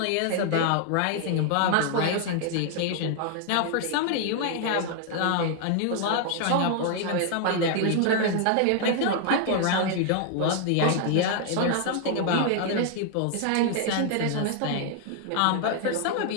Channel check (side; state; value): both; different; correlation 0.00